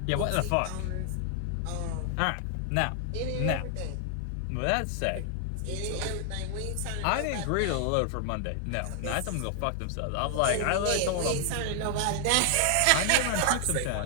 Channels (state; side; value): different; both; correlation 0.00